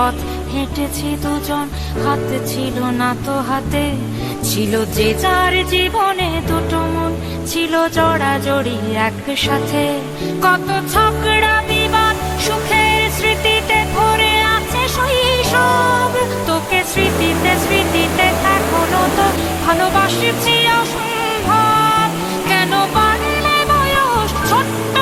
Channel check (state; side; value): identical; both; correlation 1.00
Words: হেঁটেছি দুজন, হাতে ছিল না তো হাতে, ছিল যে যার জীবনে দুটো মন, ছিল জড়াজড়ি একসাথে। কত ঝগড়া বিবাদ সুখের স্মৃতিতে ভরে আছে শৈশব, তোকে স্মৃতিতে স্মৃতিতে এখনো তো ভালোবাসছি অসম্ভব। কেন বাড়লে বয়স